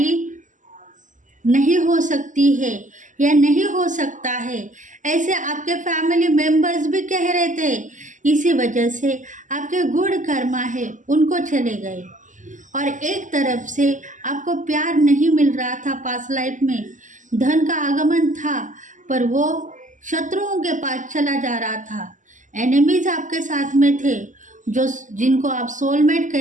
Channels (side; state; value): left; late; 0.37 ms